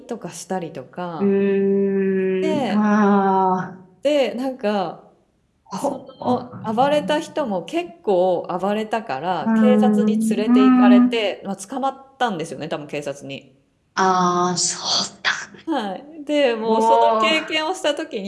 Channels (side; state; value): both; identical; correlation 1.00